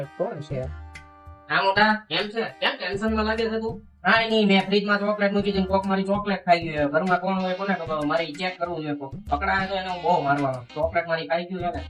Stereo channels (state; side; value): identical; both; correlation 1.00